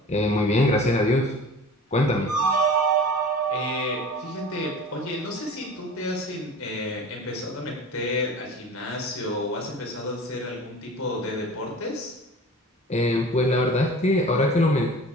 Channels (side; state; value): both; normal; correlation 0.39